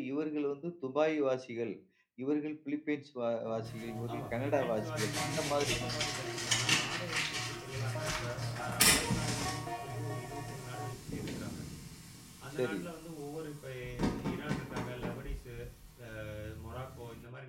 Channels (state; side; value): identical; both; correlation 1.00